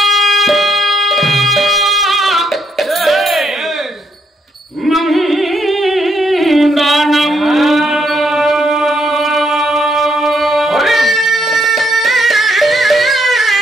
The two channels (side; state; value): both; normal; correlation 0.74